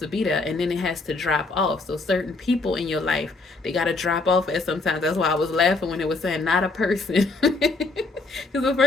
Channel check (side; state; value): right; quieter; 3.5 dB